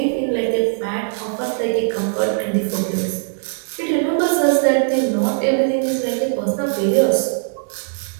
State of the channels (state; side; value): silent; left; digital silence